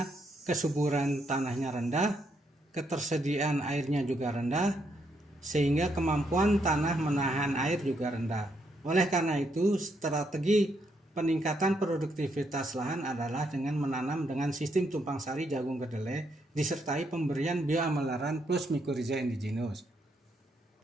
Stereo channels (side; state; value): both; normal; correlation 0.76